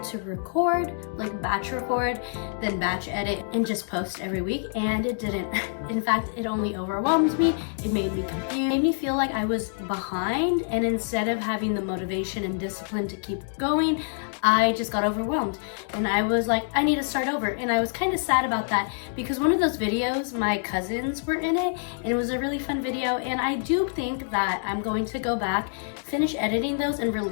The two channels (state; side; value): silent; right; digital silence